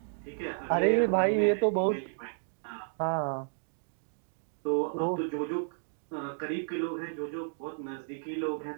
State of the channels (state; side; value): silent; left; digital silence